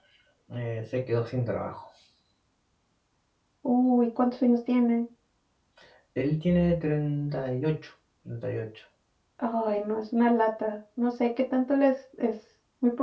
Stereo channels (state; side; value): identical; both; correlation 1.00